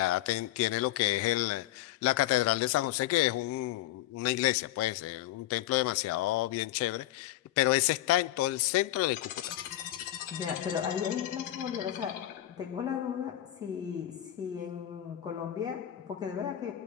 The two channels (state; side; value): quieter; right; 14.1 dB